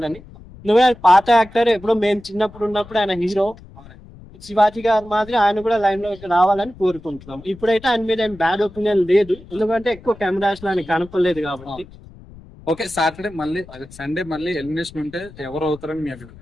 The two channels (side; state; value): left; noise; rumble, 20 dB below the sound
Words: నువ్వే పాత యాక్టర్, ఎప్పుడో మేము చిన్నప్పుడు ఉన్నప్పుడు ఆయన హీరో. శివాజీ గారు మాదిరి ఆయన కూడా లైన్ లోకి రావాలని కోరుకుంటున్నాం. ఇప్పుడైతే ఆయన మీద ఏం బ్యాడ్ ఒపీనియన్ లేదు, ఎందుకంటే ఎక్కువ కెమెరాస్ లో ఆయన కనపడలేదు కాబట్టి. ఓకే, సాటర్డే మళ్ళీ సండే మళ్ళీ ఎలిమినేషన్ ఉంటే ఎవరు అవుతారని మీ అభిప్రాయం?